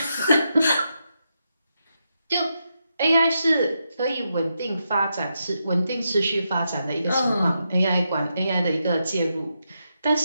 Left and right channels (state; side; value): inverted; both; correlation -0.84